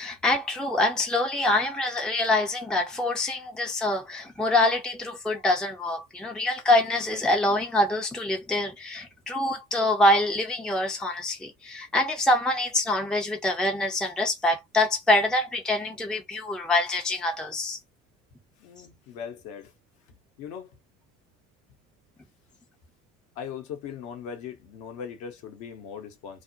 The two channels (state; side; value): normal; both; correlation 0.51